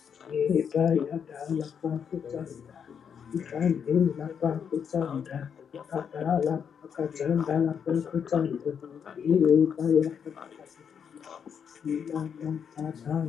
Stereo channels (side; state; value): right; quieter; 7.4 dB